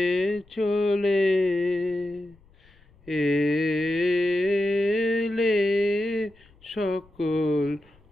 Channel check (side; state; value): left; noise; rumble, 29 dB below the sound